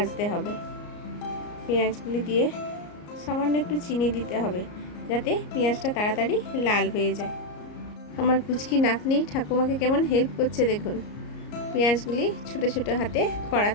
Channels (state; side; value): late; right; 34 ms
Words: হবে। পেঁয়াজগুলি দিয়ে সামান্য একটু চিনি দিতে হবে, যাতে পেঁয়াজটা তাড়াতাড়ি লাল হয়ে যায়। আমার পুচকি নাতনি ঠাকুমাকে কেমন হেল্প করছে দেখুন। পেঁয়াজগুলি ছোটো ছোটো হাতে